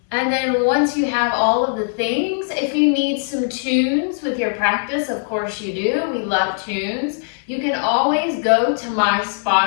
And then once you have all of the things, if you need some tunes with your practice, of course you do, we love tunes, you can always go to my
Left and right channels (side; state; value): right; silent; digital silence